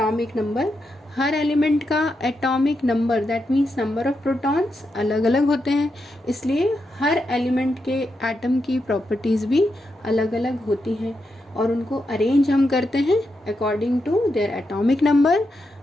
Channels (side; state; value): both; normal; correlation 0.85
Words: नंबर, हर एलिमेंट का atomic number that means number of protons अलग अलग होते हैं, इसलिए हर एलिमेंट के एटम की प्रॉपर्टीज़ भी अलग अलग होती हैं और उनको अरेंज हम करते हैं according to their atomic number